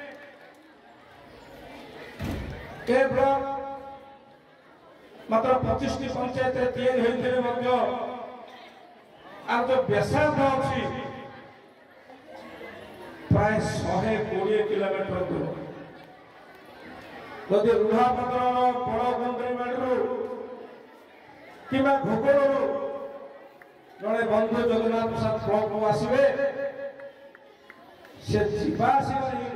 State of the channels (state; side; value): identical; both; correlation 1.00